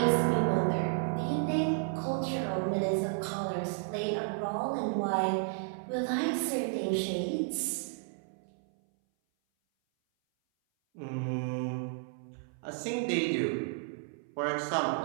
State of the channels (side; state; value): left; silent; 56 dB below the other